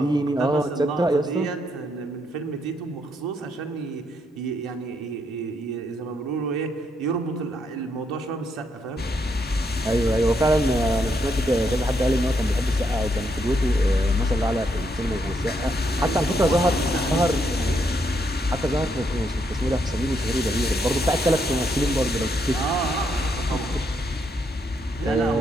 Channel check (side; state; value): both; normal; correlation 0.76